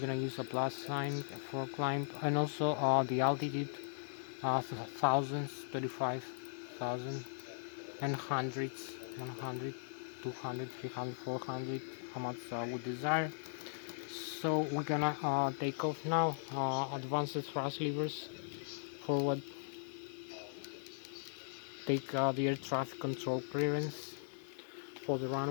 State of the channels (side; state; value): right; silent; digital silence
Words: use a plus sign for climb. And also the altitude, thousands, 35,000 and hundreds, 100, 200, 300, 400, how much we desire. So we're gonna take off now. Advanced thrust levers forward, take the air traffic control clearance for the